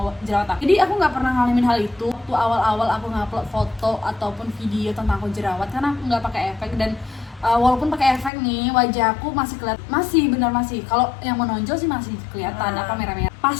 jerawat aku. Jadi aku nggak pernah ngalamin hal itu. Waktu awal-awal aku ngupload foto ataupun video tentang aku jerawat karena aku nggak pakai efek, dan walaupun pakai efek nih wajah aku masih kalau yang menonjol sih masih kelihatan apa merah-merah. Pas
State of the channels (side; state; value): right; drops out; at 8.3 s